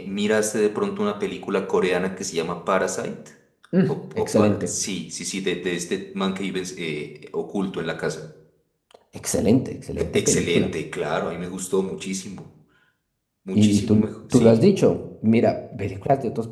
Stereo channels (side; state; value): both; identical; correlation 1.00